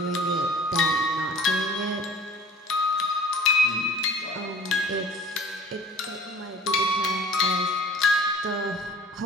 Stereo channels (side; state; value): both; normal; correlation 0.46